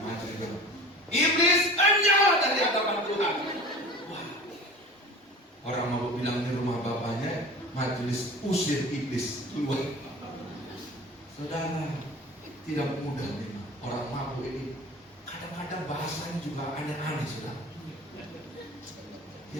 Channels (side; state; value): both; normal; correlation 0.39